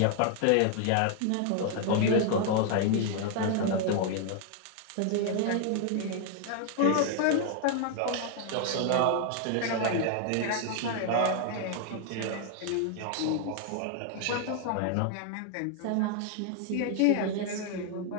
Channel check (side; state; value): both; different; correlation 0.00